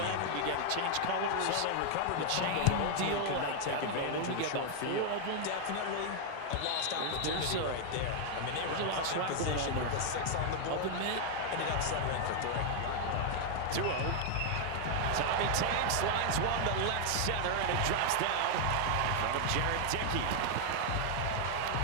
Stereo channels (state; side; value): different; both; correlation 0.00